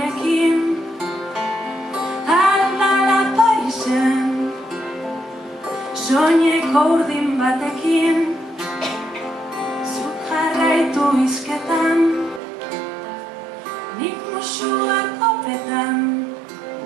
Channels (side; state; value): left; drops out; at 12.4 s